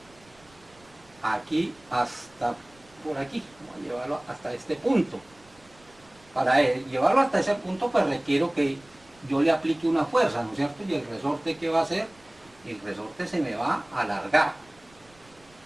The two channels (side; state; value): right; noise; rumble, 29 dB below the sound